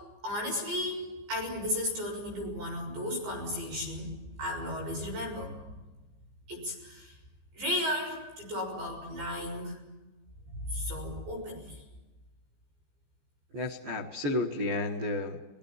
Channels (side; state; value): left; late; 15 ms